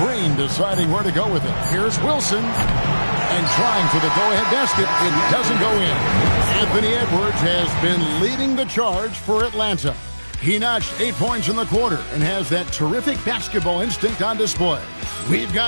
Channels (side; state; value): both; inverted; correlation -1.00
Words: deciding where to go with it. Here's Wilson. And trying for the go-ahead basket. It doesn't go in. Anthony Edwards has been leading the charge for Atlanta. He notched 8 points in the quarter and has that terrific basketball instinct on display. We've